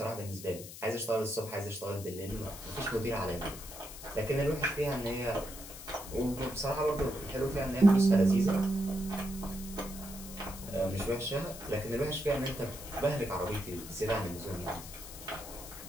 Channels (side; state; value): left; noise; hiss, 13 dB below the sound